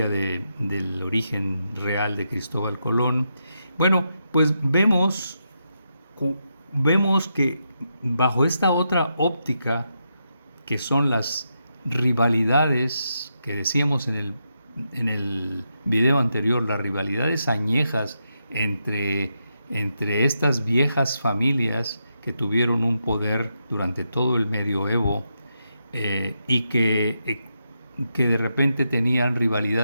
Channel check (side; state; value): both; inverted; correlation -0.84